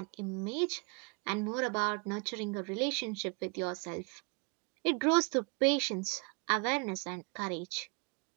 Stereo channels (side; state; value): left; quieter; 32.8 dB